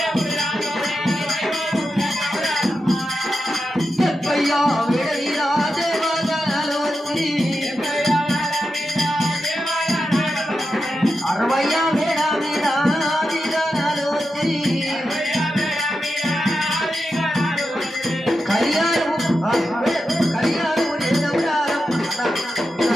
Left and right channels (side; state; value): both; normal; correlation 0.89